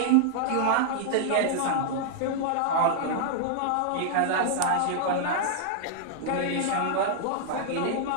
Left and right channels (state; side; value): different; both; correlation -0.01